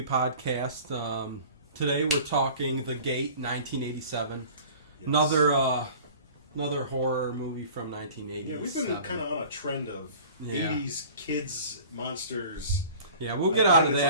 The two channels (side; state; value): both; inverted; correlation -0.44